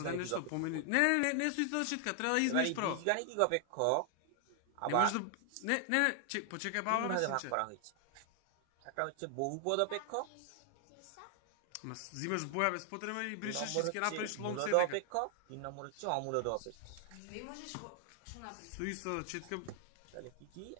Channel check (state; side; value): different; both; correlation 0.00